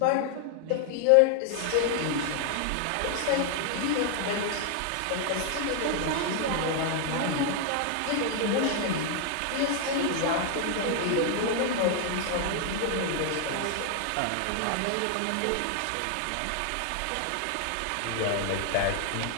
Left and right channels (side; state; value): both; different; correlation 0.00